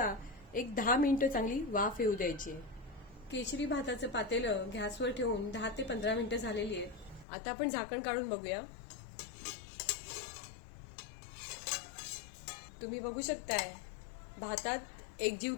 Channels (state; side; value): drops out; right; at 7.2 s